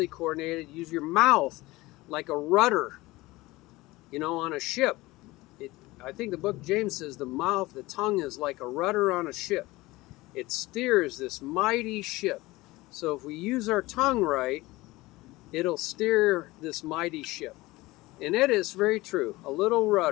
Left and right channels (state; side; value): quieter; right; 20.1 dB